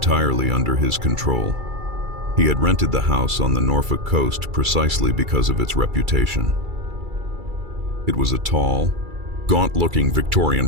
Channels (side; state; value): left; late; 2.3 ms